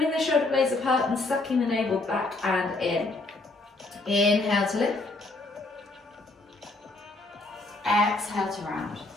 the shoulder blades apart and sucking the navel back and in. Inhale to lift. Exhale to round.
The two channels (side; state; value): right; quieter; 3.0 dB